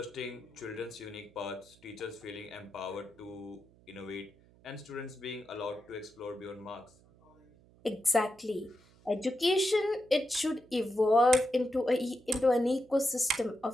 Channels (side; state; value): right; noise; hum, 28 dB below the sound